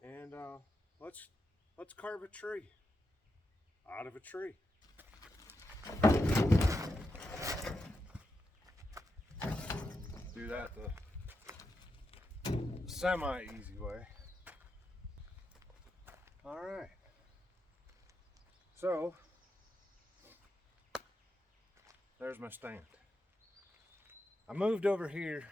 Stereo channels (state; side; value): normal; both; correlation 0.86